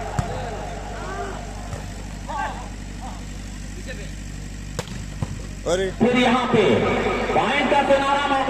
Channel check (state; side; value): identical; both; correlation 1.00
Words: अरे फिर यहाँ पे पॉइंट का सुनहरा